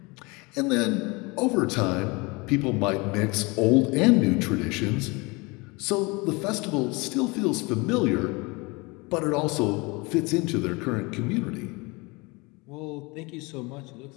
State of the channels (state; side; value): quieter; right; 26.3 dB